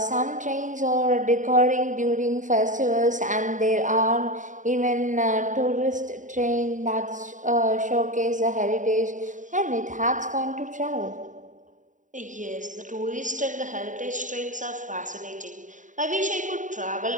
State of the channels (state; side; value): late; left; 0.37 ms